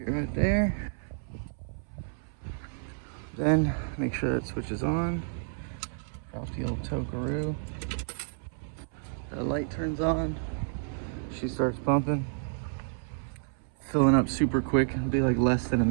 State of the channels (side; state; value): left; silent; 58 dB below the other